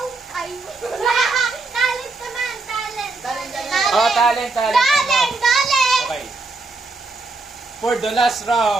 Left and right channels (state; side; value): quieter; left; 3.6 dB